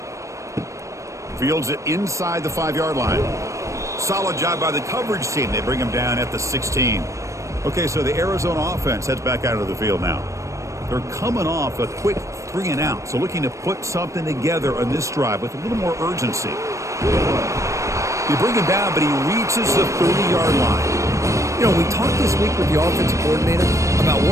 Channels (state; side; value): late; left; 0.15 ms